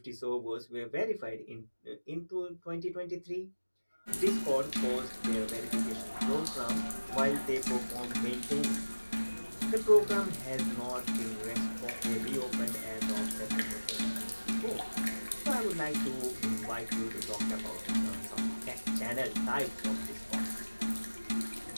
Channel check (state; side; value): inverted; both; correlation -1.00